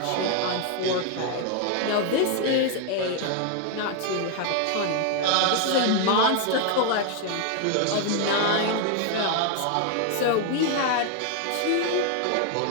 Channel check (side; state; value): both; different; correlation 0.01